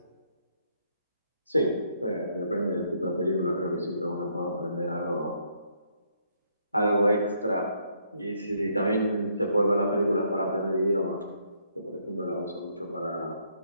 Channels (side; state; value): both; inverted; correlation -0.71